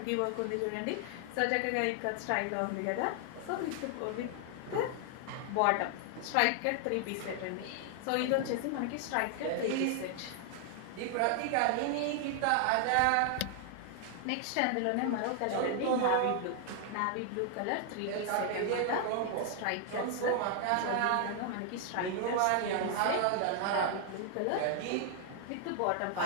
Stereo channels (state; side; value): different; both; correlation 0.00